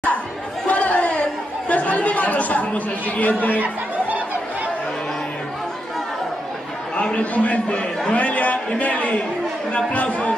Pasamos al siguiente. Abre tu mente. Noelia y Meli. Un aplauso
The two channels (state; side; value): normal; both; correlation 0.83